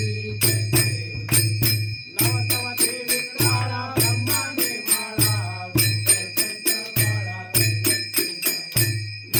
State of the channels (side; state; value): both; identical; correlation 1.00